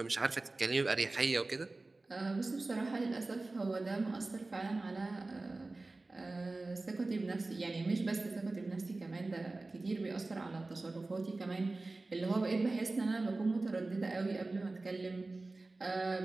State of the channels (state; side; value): quieter; left; 3.2 dB